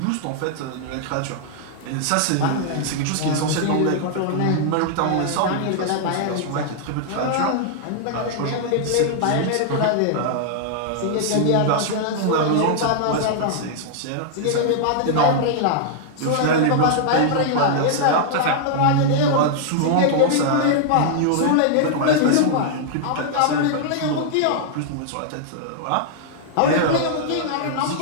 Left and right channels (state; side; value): different; both; correlation -0.01